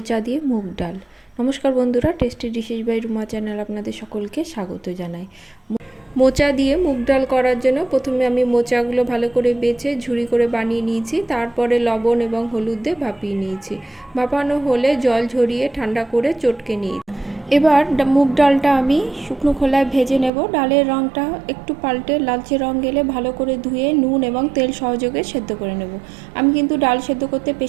দিয়ে মুগ ডাল। নমস্কার বন্ধুরা, tasty dishes by Ruma channel আপনাদের সকলকে স্বাগত জানাই। মোচা দিয়ে মুগ ডাল করার জন্য প্রথমে আমি মোচাগুলো ভালো করে বেছে ঝুরি করে বানিয়ে নিয়েছি, তারপরে লবণ এবং হলুদ দিয়ে ভাপিয়ে নিয়েছি। ভাপানো হলে জল ঝরিয়ে ঠান্ডা করে চটকে নিয়েছি। এবার মুগ ডালটা আমি শুকনো খোলায় ভেজে নেব। ডালের রঙটা একটু পাল্টে লালচে রঙ গেলে ভালো করে ধুয়ে নুন এবং তেল সহযোগে সেদ্ধ করে নেব। আমি কিন্তু ডাল সেদ্ধ করতে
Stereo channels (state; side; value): drops out; left; at 20.3 s